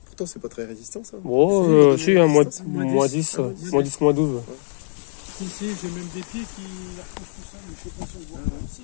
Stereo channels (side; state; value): right; silent; digital silence